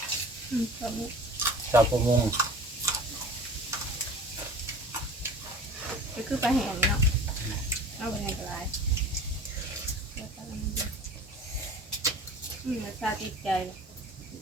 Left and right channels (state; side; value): normal; both; correlation 0.41